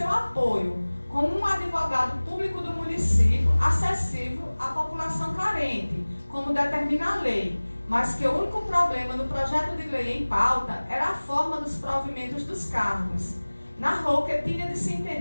apoio, como um advogado público do município acessível à população carente, como determina a lei, mas que o único problema no projeto de lei em pauta era a forma dos provimentos dos cargos. Narrou que tinha de se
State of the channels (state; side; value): inverted; both; correlation -1.00